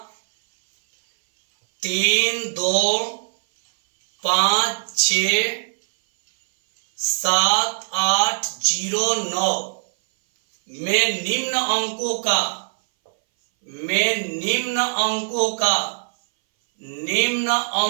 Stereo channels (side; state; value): left; silent; 61 dB below the other